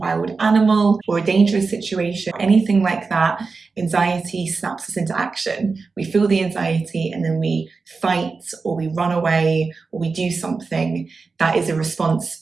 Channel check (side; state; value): left; quieter; 4.4 dB